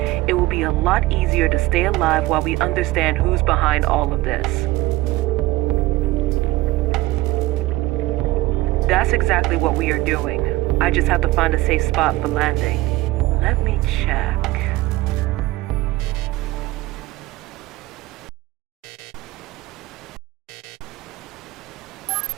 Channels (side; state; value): left; quieter; 18.7 dB